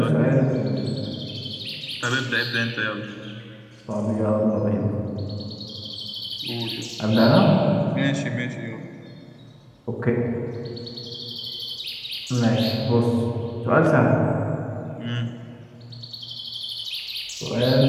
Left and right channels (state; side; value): identical; both; correlation 1.00